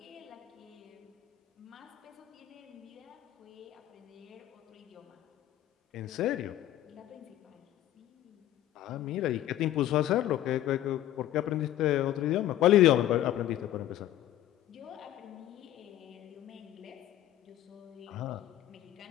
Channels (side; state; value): right; quieter; 13.2 dB